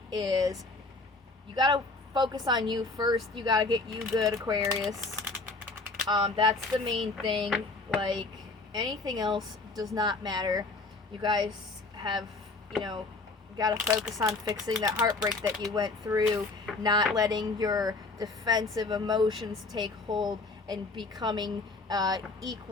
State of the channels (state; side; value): quieter; right; 3.5 dB